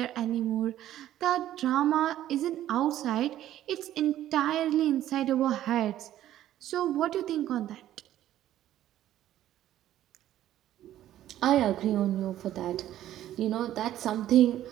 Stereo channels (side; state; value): left; quieter; 12.7 dB